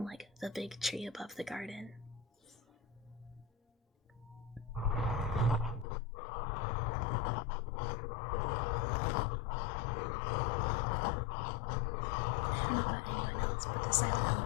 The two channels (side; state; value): right; drops out; at 5.9 s